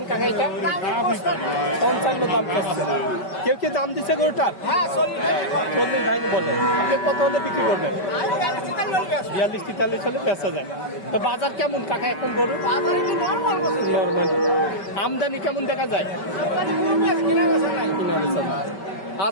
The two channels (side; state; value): right; late; 5.2 ms